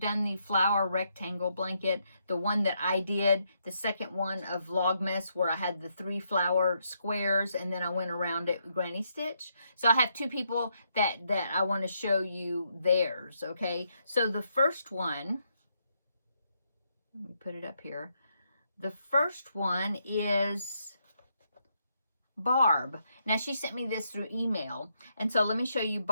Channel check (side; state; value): both; inverted; correlation -0.77